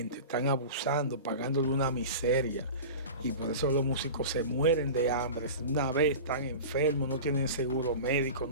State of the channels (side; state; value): both; inverted; correlation -0.32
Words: están abusando, pagándole una miseria. Y por eso los músicos se mueren de hambre. Una vez están enfermos, no tienen seguro médico,